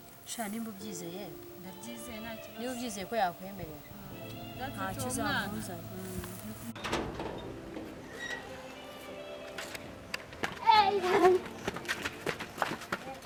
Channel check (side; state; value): both; identical; correlation 1.00